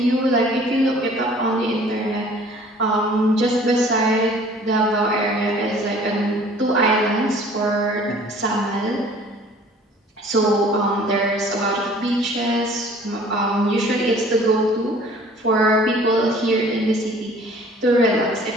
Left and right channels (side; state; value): both; normal; correlation 0.51